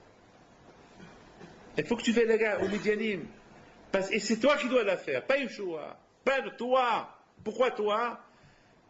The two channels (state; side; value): identical; both; correlation 1.00